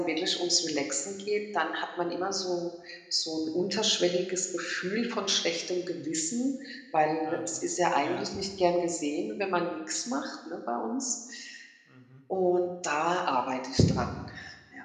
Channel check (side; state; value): both; identical; correlation 1.00